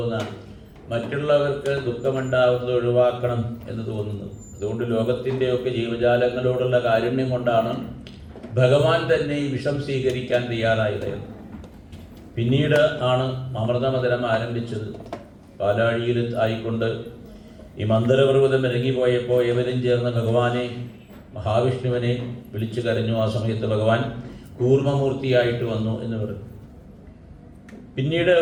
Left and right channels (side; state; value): both; identical; correlation 1.00